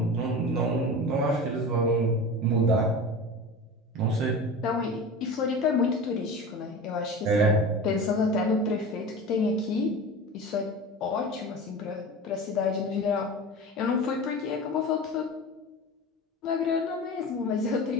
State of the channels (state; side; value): normal; both; correlation 0.32